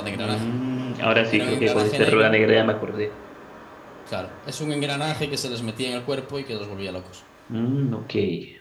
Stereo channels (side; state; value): both; identical; correlation 1.00